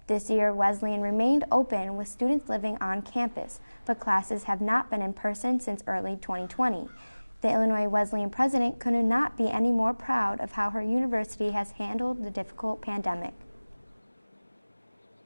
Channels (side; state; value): both; inverted; correlation -1.00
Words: This year, Wesleyan remained open with students living on campus, but classes have not been in person since early 2020. The Illinois Wesleyan president could not be any more proud of how her university has handled the difficult pandemic.